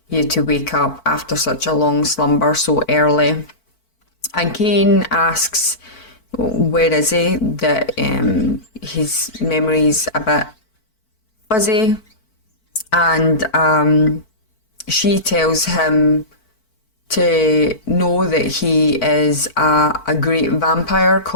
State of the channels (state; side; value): late; right; 4.5 ms